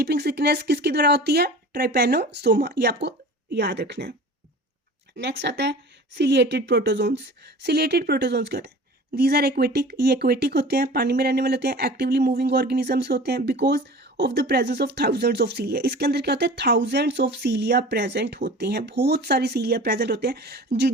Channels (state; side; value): normal; both; correlation 0.40